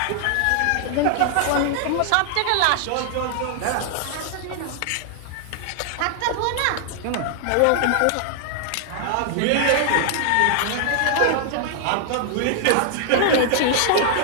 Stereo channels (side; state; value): both; different; correlation 0.00